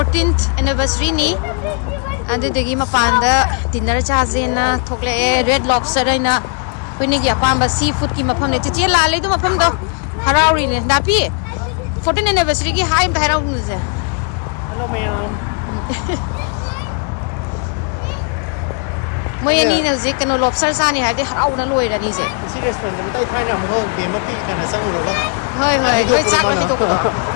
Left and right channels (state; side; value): quieter; right; 36.3 dB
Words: anniversary ni adudagi mapanda dinner chajena thokle red lobster aina khuni gi apamba seafood ki mafam ne chichi la le du mafam do harauri ne dapi 14th anniversary ki hi bhairau nu je hello ma'am moi ani na je kano lobster sa ni ha de harau na loi ra ni je si restaurant ni tai thai na mo de ma pi kana sang ro ga hoi loi chak ma mi to ko do